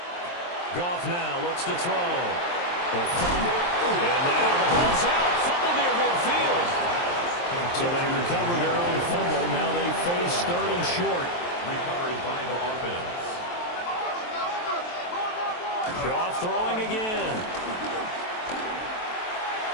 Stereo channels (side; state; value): right; late; 23 ms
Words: Goff now looks to throw. And now the ball's out. Fumble near midfield. So they recover their own fumble. Now they face 3rd and short. Recovered by the offense. Goff throwing again.